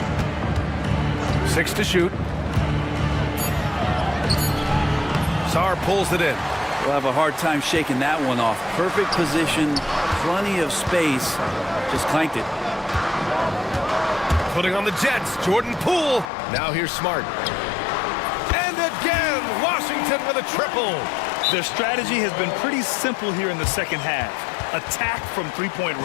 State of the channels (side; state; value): right; drops out; at 16.3 s